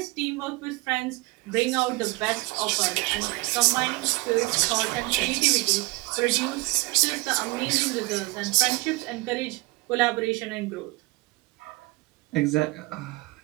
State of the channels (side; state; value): left; quieter; 23.4 dB